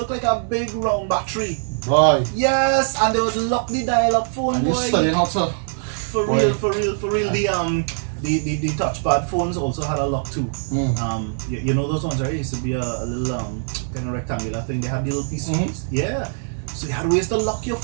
like a big round battery. Boy. Yes, and they would lock the dial up phone, and boy. You studying how to for real. The touchpad phones also had a lock too. You know those ones, right? It used to be a little kind of rectangular thing. They had the little piece. Yeah. So you had ways to lock your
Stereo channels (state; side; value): silent; left; 64 dB below the other